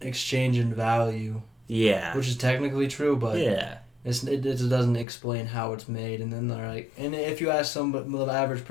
exchange in value, yeah, which is technically true, but yeah, it doesn't explain how it's made. And then they're and if you ask the average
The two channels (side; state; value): right; drops out; at 5.1 s